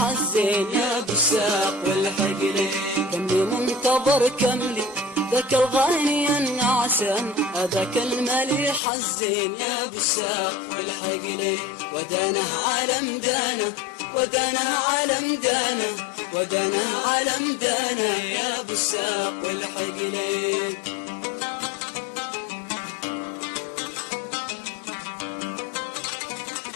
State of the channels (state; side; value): drops out; right; at 8.8 s